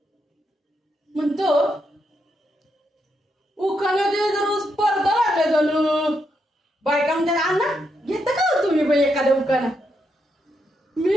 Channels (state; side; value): normal; both; correlation 0.80